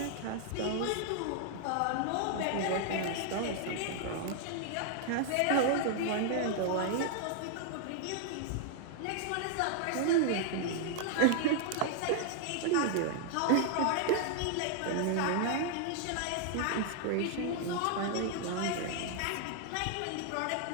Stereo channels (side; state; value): both; different; correlation 0.00